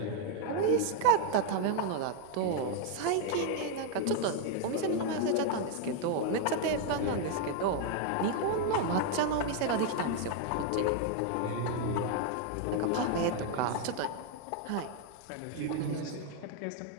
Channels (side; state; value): both; different; correlation 0.00